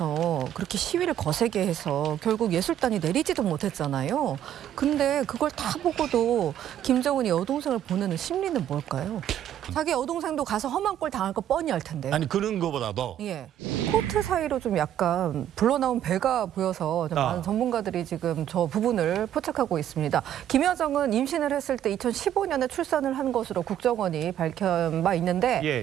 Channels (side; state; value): left; quieter; 10.9 dB